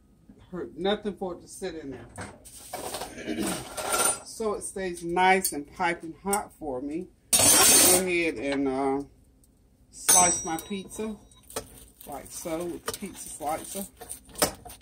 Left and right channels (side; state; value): both; identical; correlation 1.00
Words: hurt nothing for it to sit in there. So it stays nice and piping hot for me. I'm going to go ahead and slice my pizza like so with the pizza slicer.